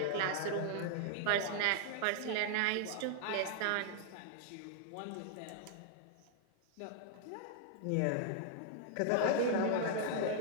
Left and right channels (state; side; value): different; both; correlation -0.01